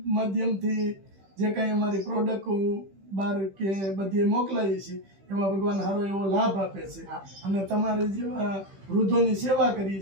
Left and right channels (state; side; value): late; left; 15 ms